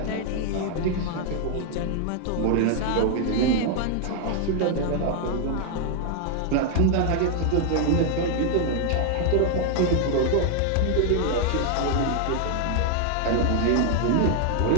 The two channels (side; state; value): both; different; correlation 0.00